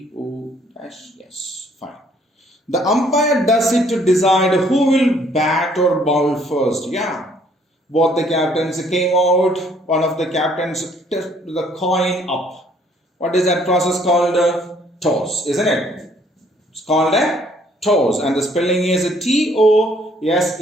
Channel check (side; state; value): both; normal; correlation 0.63